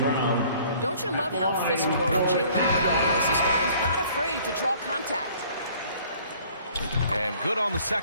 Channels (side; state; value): both; inverted; correlation -0.55